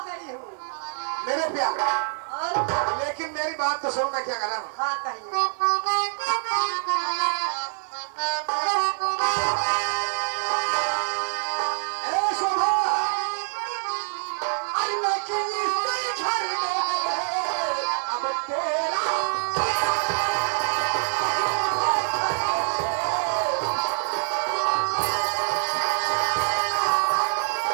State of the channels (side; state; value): left; silent; 56 dB below the other